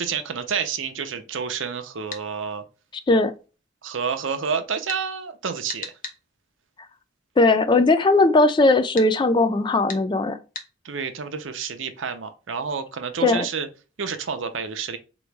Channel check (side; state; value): both; normal; correlation 0.32